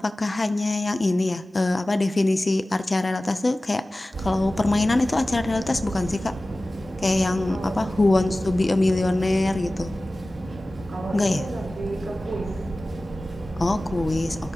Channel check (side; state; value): both; normal; correlation 0.97